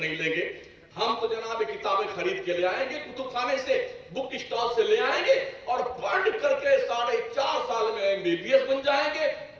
لیں گے, ہم تو جناب کتابیں خرید کے لے آئیں گے، کتب خانے سے، بک اسٹال سے لے آئیں گے اور پڑھ کر کے 4.5 سال میں MBBS بن جائیں گے،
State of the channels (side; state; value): both; identical; correlation 1.00